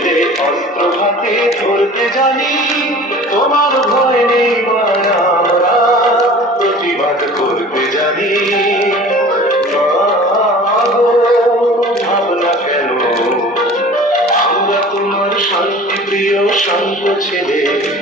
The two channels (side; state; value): both; normal; correlation 0.43